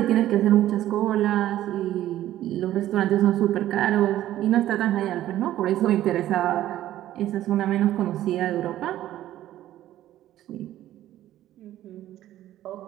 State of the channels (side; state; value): left; quieter; 13.4 dB